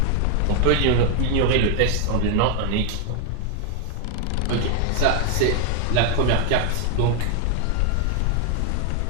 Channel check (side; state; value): both; different; correlation 0.00